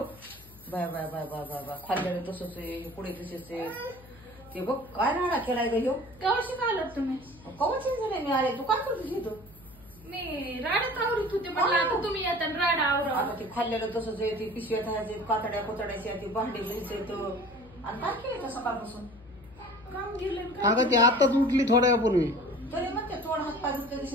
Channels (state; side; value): noise; left; hum, 23 dB below the sound